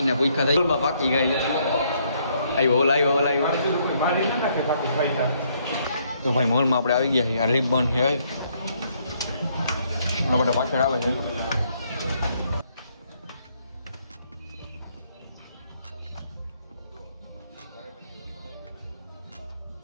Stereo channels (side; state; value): both; inverted; correlation -0.70